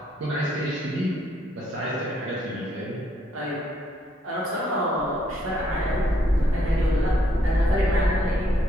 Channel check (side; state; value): both; normal; correlation 0.71